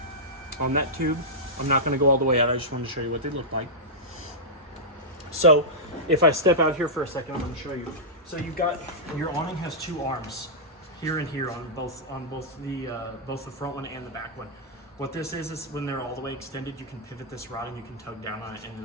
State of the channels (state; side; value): normal; both; correlation -0.12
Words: On that tube, I'm not going to go all the way out. I just wanted to show you what they look like. So if I step out here for a second, I'm going to show you. So you've got, your awning has two arms, here and here on both the front one and the back one. What this is when they're all the way extended, you can pivot this rod and you can tug down on it and